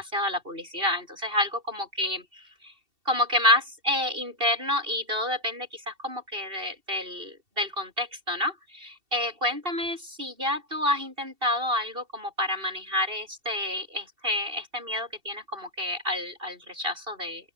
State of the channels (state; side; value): late; left; 2.7 ms